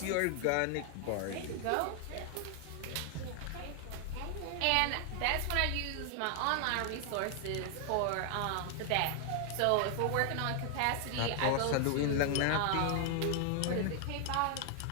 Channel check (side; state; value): both; different; correlation 0.00